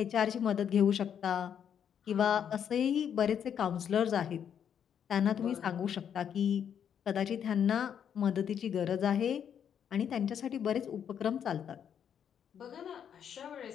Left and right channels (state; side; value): quieter; right; 8.5 dB